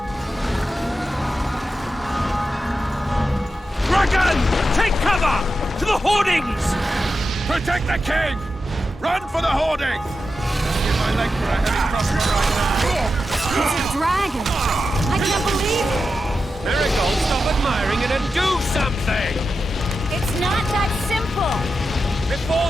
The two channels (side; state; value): both; normal; correlation 0.90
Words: Dragon! Take cover! To the hoardings! Protect the king! Run for the hoarding! Give my leg for a heavy crossbow right now. It's a dragon! I can't believe it! Marigold, stop admiring it and do something! It's not that simple!